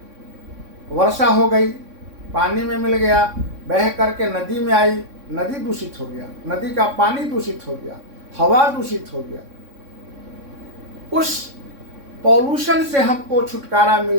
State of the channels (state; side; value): late; left; 3.6 ms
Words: वर्षा हो गई, पानी में मिल गया, बह करके नदी में आई, नदी दूषित हो गया, नदी का पानी दूषित हो गया, हवा दूषित हो गया। उस पॉल्यूशन से हमको छुटकारा